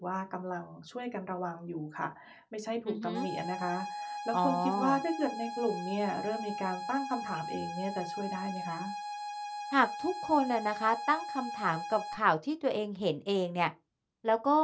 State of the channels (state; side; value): identical; both; correlation 1.00